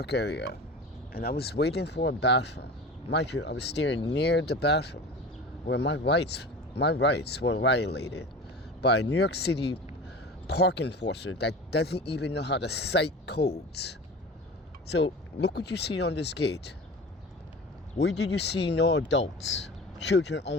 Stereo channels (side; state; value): both; normal; correlation 0.35